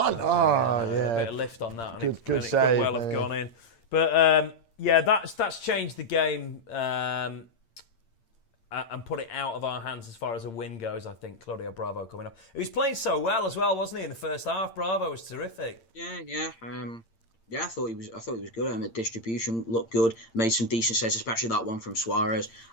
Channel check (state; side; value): late; right; 8.8 ms